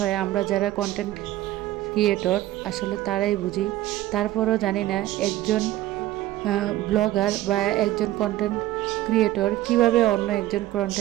আমরা যারা কন্টেন্ট ক্রিয়েটর আসলে তারাই বুঝি। তারপরও জানি না একজন ব্লগার বা একজন কন্টেন্ট ক্রিয়েটর কিভাবে অন্য একজন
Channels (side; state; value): left; quieter; 15.2 dB